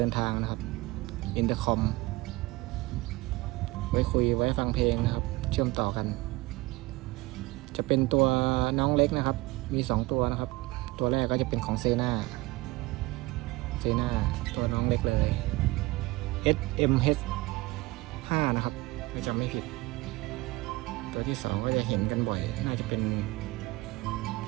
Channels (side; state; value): left; quieter; 21.0 dB